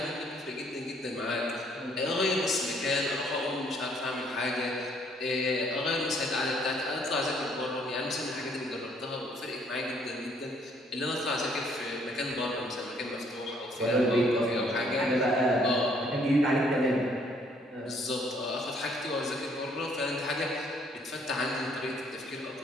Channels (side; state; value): both; normal; correlation 0.65